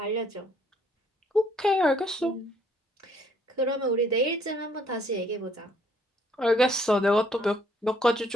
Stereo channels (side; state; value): both; normal; correlation 0.65